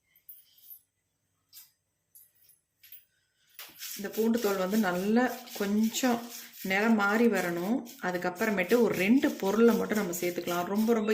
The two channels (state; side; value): identical; both; correlation 1.00